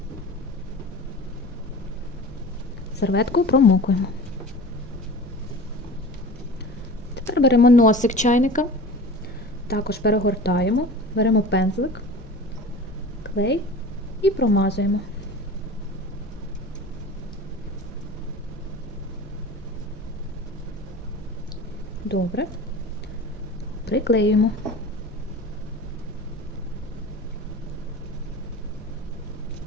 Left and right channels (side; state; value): both; normal; correlation 0.37